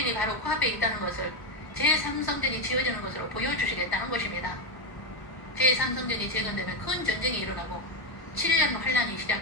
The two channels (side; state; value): right; late; 1.0 ms